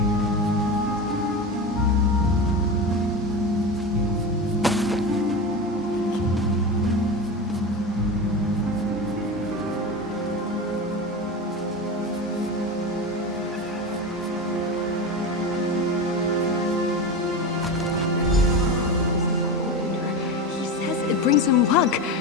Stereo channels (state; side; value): normal; both; correlation 0.24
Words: Brings him luck.